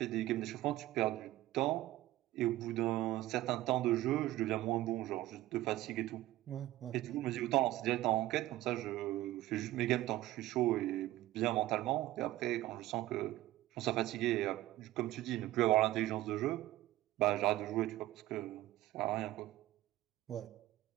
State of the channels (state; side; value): quieter; left; 16.1 dB